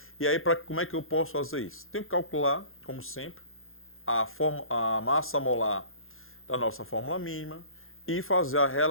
E aí, como é que eu posso fazer isso? Tenho que calcular, como sempre, a massa molar da nossa fórmula mínima e fazer a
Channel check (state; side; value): late; right; 0.60 ms